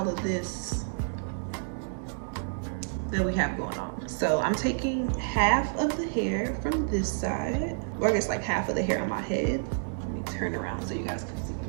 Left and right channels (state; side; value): silent; left; digital silence